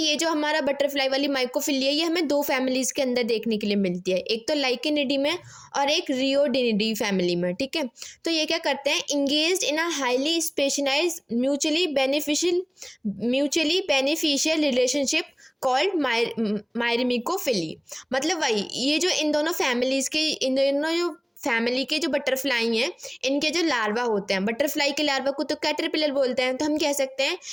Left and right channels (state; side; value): identical; both; correlation 1.00